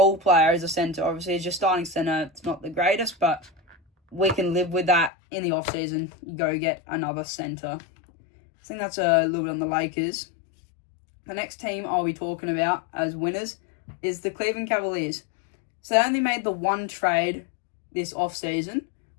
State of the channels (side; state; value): right; drops out; at 5.1 s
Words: player as a center. Obviously, as your starting center, it's not the greatest, but we can live with that in the offseason. You go get another center. I think that's a little bit on the Lakers. The next team I'll be talking about as winners is the Cleveland Cavaliers. So they only made the one trade this offseason,